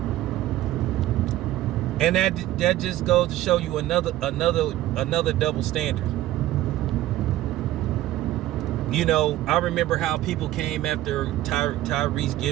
And that just goes to show you another double standard. I remember how people came after Tyrese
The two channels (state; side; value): quieter; left; 14.8 dB